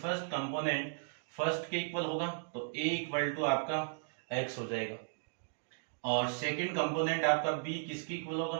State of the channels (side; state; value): left; silent; digital silence